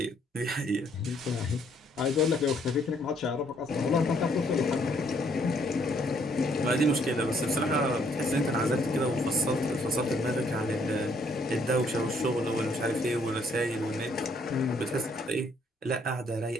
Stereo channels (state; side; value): normal; both; correlation 0.67